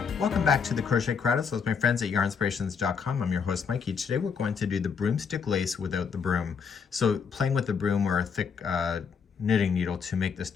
Welcome back to the Crochet Credits with my friends at yarnspirations.com. I'm your host Mikey. Today we're going to do the broomstick lace without the broom. So playing with the broom or a thick knitting needle to make the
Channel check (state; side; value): quieter; right; 6.2 dB